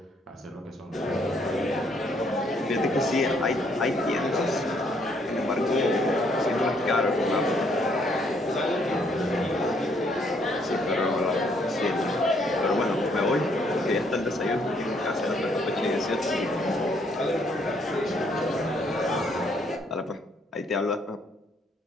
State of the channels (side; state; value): both; normal; correlation 0.68